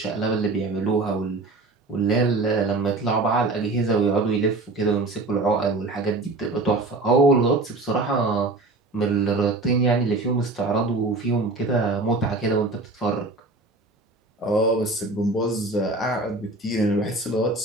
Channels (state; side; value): quieter; left; 3.2 dB